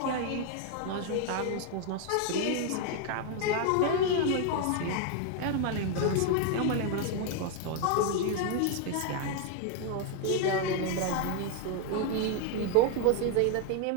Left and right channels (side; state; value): both; different; correlation 0.00